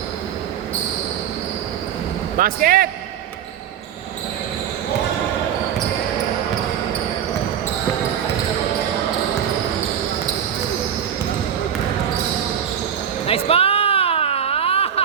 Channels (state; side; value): quieter; left; 8.9 dB